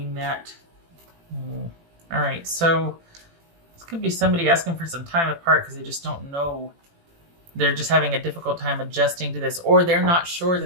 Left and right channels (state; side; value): late; left; 18 ms